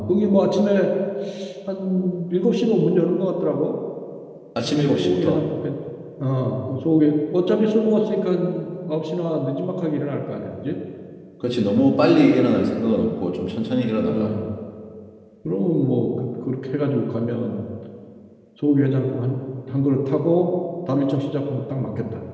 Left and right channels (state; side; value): identical; both; correlation 1.00